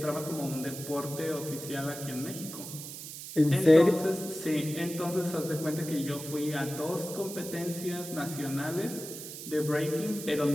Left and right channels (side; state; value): right; noise; hiss, 10 dB below the sound